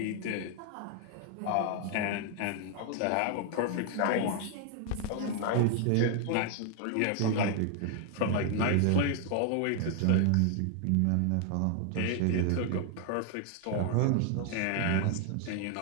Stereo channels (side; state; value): both; different; correlation 0.00